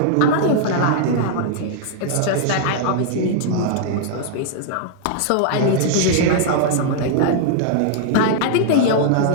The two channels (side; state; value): both; different; correlation -0.01